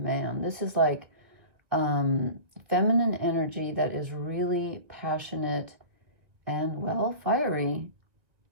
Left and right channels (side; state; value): left; late; 1.8 ms